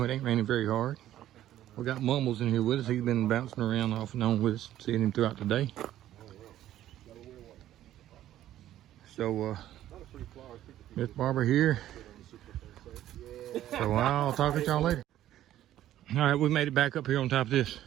it ain't raining very hard. We got Mumbles in here with us. He's been bouncing around off and on with us, seeing him throughout the day. So Miss Barbara here. So I'll talk to y'all later. All right, we made it back up here on top of this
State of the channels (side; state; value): left; quieter; 12.8 dB